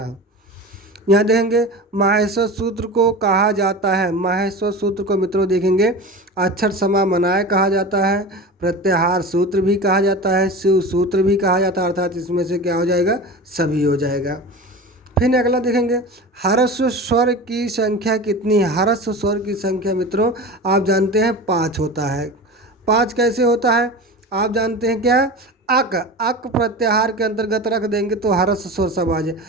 यहाँ देखेंगे माहेश्वर सूत्र को कहा जाता है, माहेश्वर सूत्र को मित्रों देखेंगे अक्षर समामनाय कहा जाता है, प्रत्याहार सूत्र भी कहा जाता है, शिव सूत्र भी कहा जाता है, अर्थात इसमें से क्या हो जाएगा, सभी हो जाएगा। फिर अगला देखेंगे ह्रस्व स्वर की संख्या कितनी है। ह्रस्व स्वर की संख्या मित्रों आप जानते हैं 5 होता है। 5 कैसे होता है आप जानते हैं क्या, अक, अक प्रत्याहार के अंतर्गत रख देंगे तो ह्रस्व स्वर सब आ जाए,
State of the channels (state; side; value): normal; both; correlation 0.31